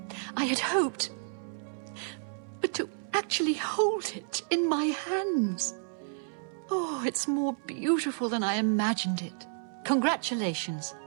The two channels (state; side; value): silent; left; 57 dB below the other